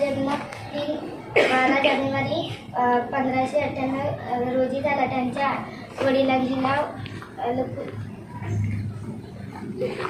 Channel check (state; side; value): identical; both; correlation 1.00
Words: जन्म 12 जानेवारी 1598 रोजी झाला. त्यांच्या वडिलांचे नाव